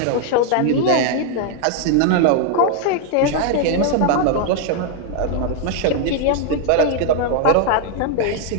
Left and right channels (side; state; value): both; different; correlation 0.00